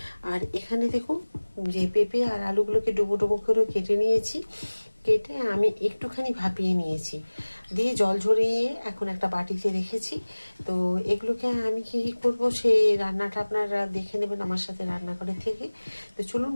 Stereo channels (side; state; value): both; inverted; correlation -1.00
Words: আর এখানে দেখুন যে পেঁপে আর আলুগুলোকে ডুবো ডুবো করে কেটে নিয়েছি। কেটে আমি একটুখানি ভাপিয়ে নিয়েছি, দিয়ে জল ঝরিয়ে এখন একটা বাটিতে রেখেছি। তো এগুলোকে আমি কী করবো সেই রান্নাটা আপনারা দেখে নেবেন আমার সাথে রান্নাঘরে থেকে। তো চলুন